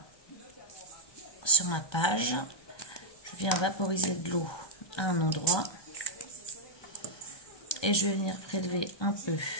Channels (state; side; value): late; right; 1.2 ms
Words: page. Je viens vaporiser de l'eau à un endroit. Et je vais venir prélever un peu